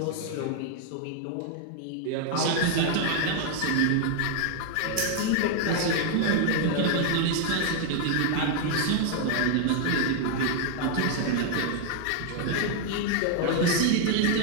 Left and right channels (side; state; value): both; different; correlation 0.00